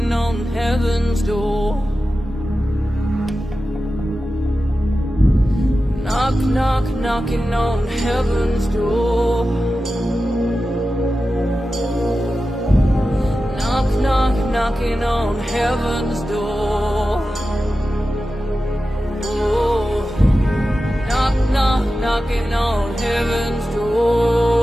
on heaven's door. Knock, knock, knocking on heaven's door. Knock, knock, knocking on heaven's door. Oh, knock, knock, knocking on heaven's door.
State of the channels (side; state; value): both; normal; correlation 0.93